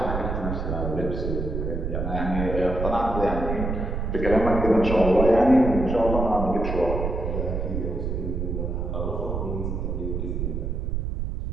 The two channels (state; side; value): noise; right; rumble, 2 dB below the sound